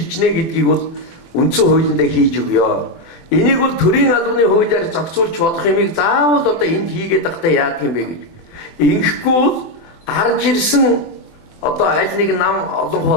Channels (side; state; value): right; late; 24 ms